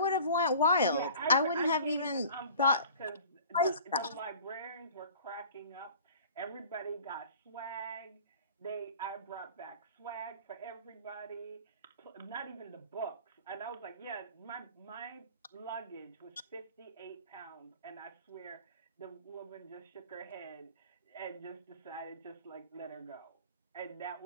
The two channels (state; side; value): inverted; both; correlation -0.45